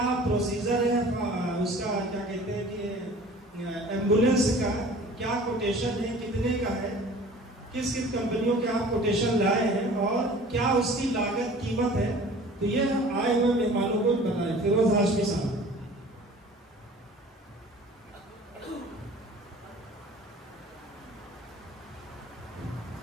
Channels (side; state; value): both; normal; correlation 0.46